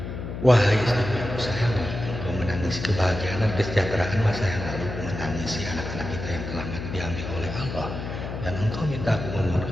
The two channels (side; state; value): left; noise; hum, 7 dB below the sound